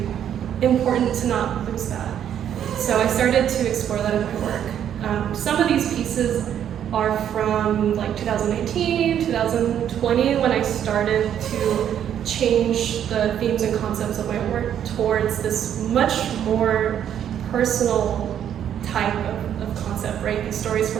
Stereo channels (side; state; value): left; quieter; 9.7 dB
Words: important to not lose that. So I started to explore that in my work. Some of these pieces are from like 2019, 2020, when I started to change the themes and concepts of my work towards this much more personal type of concept, right? These stories